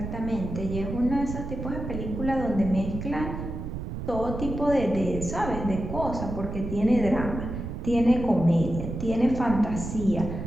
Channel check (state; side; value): noise; right; rumble, 6 dB below the sound